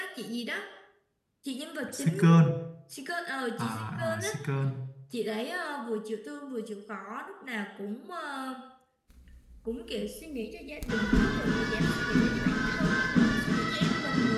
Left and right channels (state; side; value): identical; both; correlation 1.00